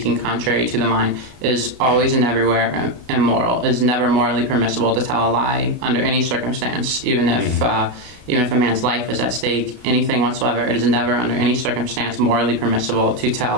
contrary to the mind, is always and everywhere immoral. It is never morally permissible to tell a lie under any circumstance, even if a man's life is at stake, anything whatsoever. It is never under any circumstance morally permissible to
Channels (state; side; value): late; left; 34 ms